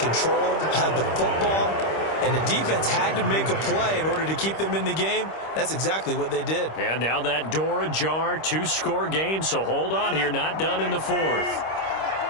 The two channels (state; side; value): late; right; 25 ms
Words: had the football, and the defense had to make a play in order to keep them in the game. That's exactly what they did. And now that door ajar, 2-score game, so hold on here, not done in the fourth.